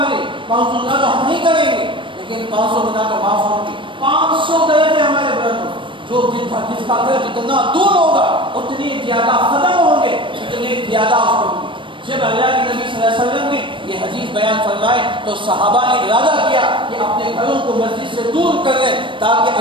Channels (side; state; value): left; late; 0.24 ms